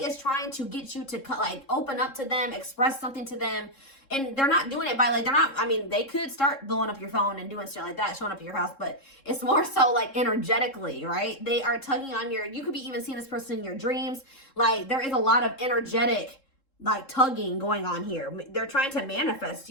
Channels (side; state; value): right; late; 3.7 ms